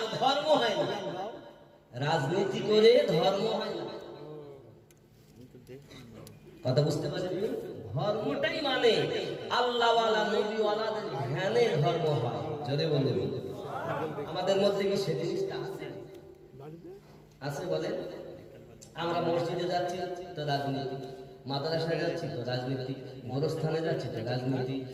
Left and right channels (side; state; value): both; identical; correlation 1.00